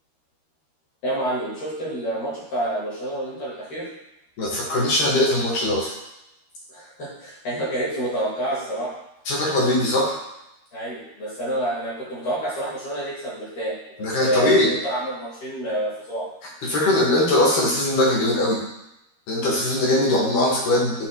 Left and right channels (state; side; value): late; right; 13 ms